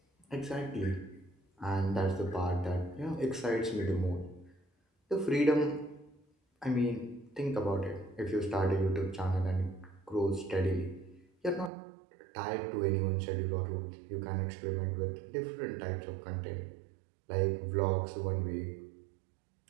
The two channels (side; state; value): left; drops out; at 11.7 s